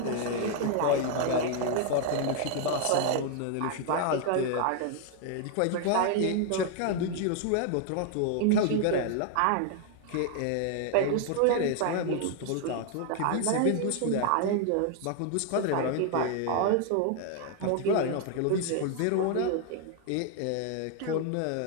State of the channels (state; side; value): different; both; correlation 0.00